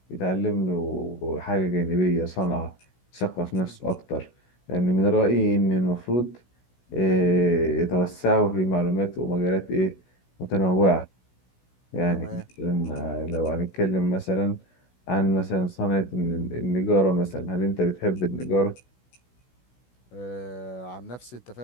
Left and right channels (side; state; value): right; late; 16 ms